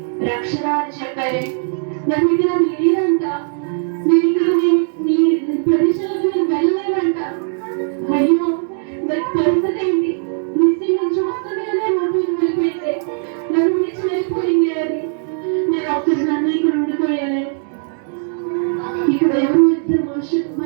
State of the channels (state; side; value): silent; left; 67 dB below the other